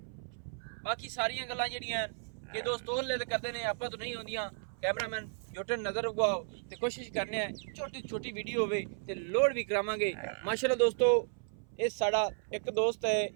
ਬਾਕੀ ਸਾਰੀਆਂ ਗੱਲਾਂ ਜਿਹੜੀਆਂ ਕਿ ਦੋਸਤ ਉਹਲੇ ਕਰਦੇ ਨੇ, ਆਪਾਂ ਤੋਂ ਨਹੀਂ ਹੁੰਦੀਆਂ। ਕੈਮਰਾਮੈਨ ਜੋਟਨ ਨਜ਼ਰ ਉਗਾਓ ਤੇ ਕੋਸ਼ਿਸ਼ ਕਰਨੇ ਆ ਛੋਟੀ ਛੋਟੀ ਵੀਡੀਓ ਹੋਵੇ ਤੇ ਲੋਡ ਵੀ ਕਰਾਵਾਂਗੇ ਮਾਸ਼ਾਅੱਲਾ। ਦੋਸਤੋ ਇਹ ਸਾਡਾ ਇੱਕ ਦੋਸਤ ਹੈ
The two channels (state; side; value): silent; left; 55 dB below the other